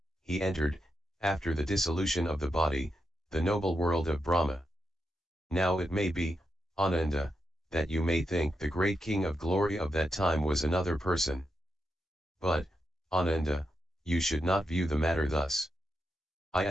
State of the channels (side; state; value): both; normal; correlation 0.85